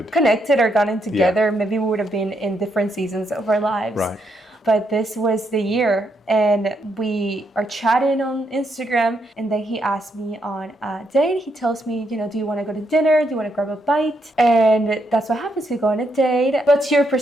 or gotten together. Yeah. Maybe we would have been in different seasons of our lives. Right. But this was the year, and we are chatting on Instagram, and then he asked me on a date. He tells me, do you want to go to dinner? Do you want to grab a bite? And that's what happens. We go on a date. What's your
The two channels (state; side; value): normal; both; correlation 0.77